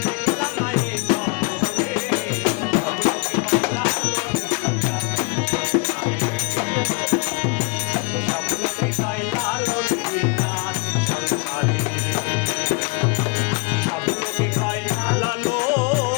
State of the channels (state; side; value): quieter; right; 28.8 dB